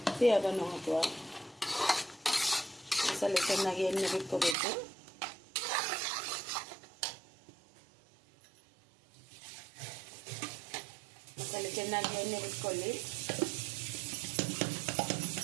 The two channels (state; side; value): drops out; left; at 4.5 s